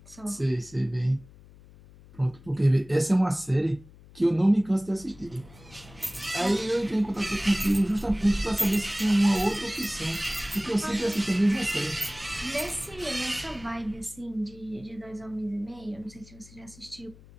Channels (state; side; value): noise; left; hum, 22 dB below the sound